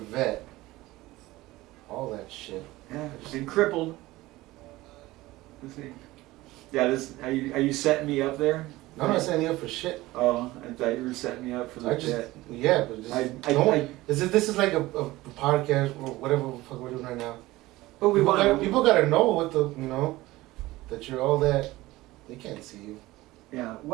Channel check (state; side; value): quieter; left; 18.5 dB